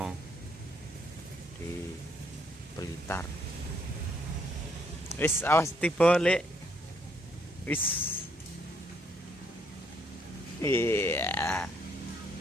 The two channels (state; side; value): normal; both; correlation 0.70